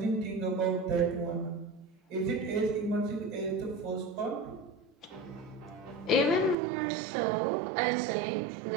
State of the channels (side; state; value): left; drops out; at 6.6 s